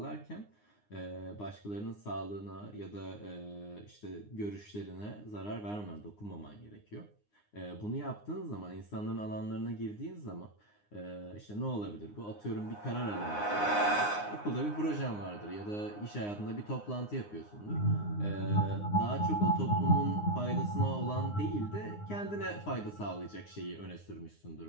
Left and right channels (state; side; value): late; right; 9.7 ms